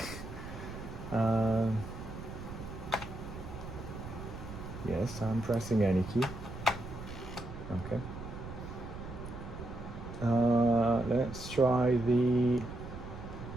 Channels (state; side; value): noise; right; rumble, 10 dB below the sound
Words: Yes, I'm pressing any key. Okay. Let's try the